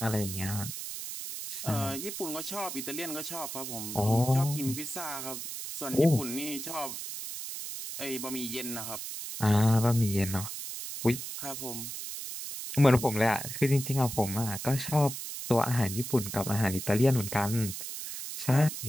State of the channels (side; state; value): right; noise; hiss, 7 dB below the sound